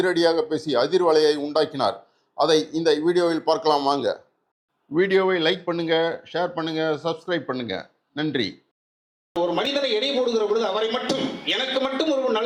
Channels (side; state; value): both; identical; correlation 1.00